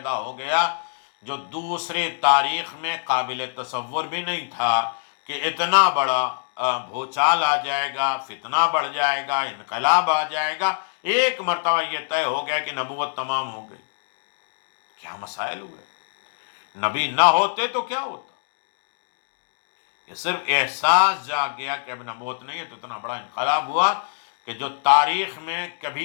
ہو گیا جو دوسری تاریخ میں قابل تصور بھی نہیں تھا کہ اتنا بڑا بھوچال آ جائے گا، فتنہ بڑھ جائے گا، انقلاب آ جائے گا، ایک مرتبہ یہ طے ہو گیا کہ نبوت تمام ہو گئی۔ کیا مسائل ہوئے، نبی نہ ہوتے تو کیا ہوتا؟ یہ صرف احساس جا گیا کہ اب نبوت نہیں ہے، تو اتنا بڑا انقلاب ہوا کہ جو تاریخ میں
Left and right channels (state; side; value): silent; right; digital silence